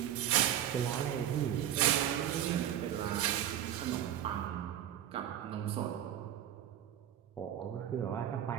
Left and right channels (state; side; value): quieter; left; 10.8 dB